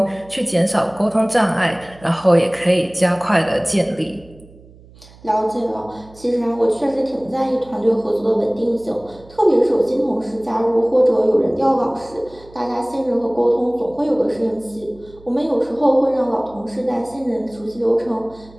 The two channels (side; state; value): right; noise; hum, 24 dB below the sound